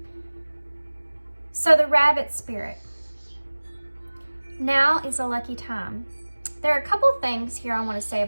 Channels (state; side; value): inverted; both; correlation -1.00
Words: So the rabbit spirit. Now is a lucky time. There are a couple things here I want to say